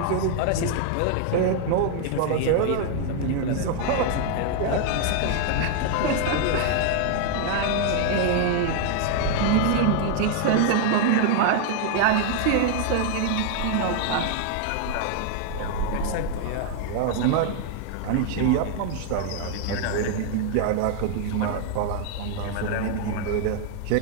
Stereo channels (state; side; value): different; both; correlation 0.00